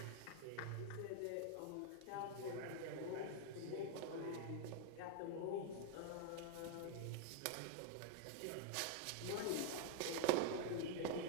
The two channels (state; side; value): different; both; correlation 0.01